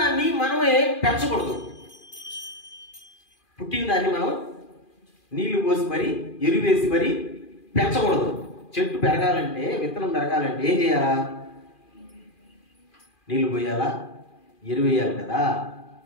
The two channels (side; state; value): right; late; 2.4 ms